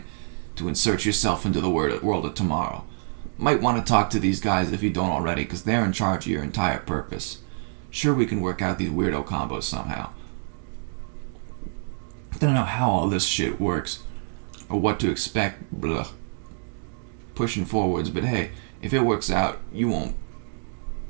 to insert yourself into the world of tomorrow. Might want to talk to these guys if you don't already, because they're in charge of your entire purpose. Sure, we can work out these weirdo combos somehow. I don't know how all this shit works, or what to expect, blah, pushing forwards, but hey, if it works out, you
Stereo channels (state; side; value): silent; left; digital silence